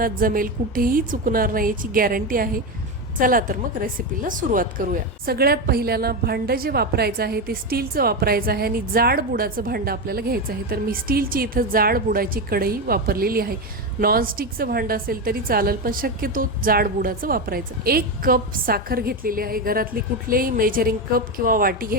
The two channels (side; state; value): both; normal; correlation 0.14